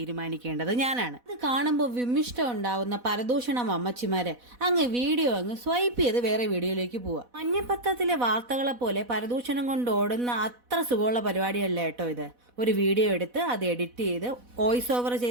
ഞാനാണ്. അത് കാണുമ്പോൾ വിമിഷ്ട ഉണ്ടാവുന്ന പരദൂഷണം അമ്മച്ചിമാര് അങ്ങ് വീഡിയോ അങ്ങ് സ്വൈപ്പ് ചെയ്ത് വേറെ വീഡിയോയിലേക്ക് പോവാ. മഞ്ഞപ്പത്രത്തിലെ വാർത്തകളെ പോലെ പരദൂഷണം കൊണ്ട് ഓടുന്ന അത്ര സുഖമുള്ള പരിപാടിയല്ല കേട്ടോ ഇത്. ഒരു വീഡിയോ എടുത്ത് അത് എഡിറ്റ് ചെയ്ത് വോയിസ് ഓവർ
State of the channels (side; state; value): left; late; 4.1 ms